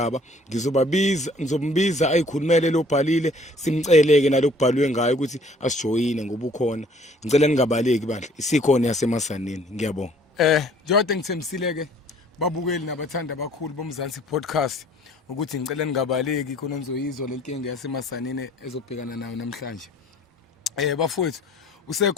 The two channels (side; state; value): both; normal; correlation 0.56